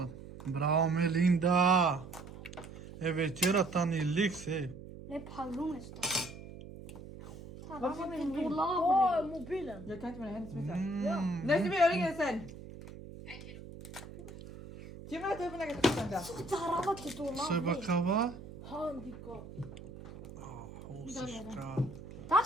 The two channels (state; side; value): noise; right; hum, 14 dB below the sound